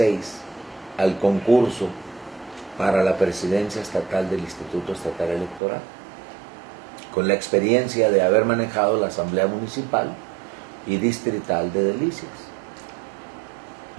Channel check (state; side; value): drops out; left; at 5.6 s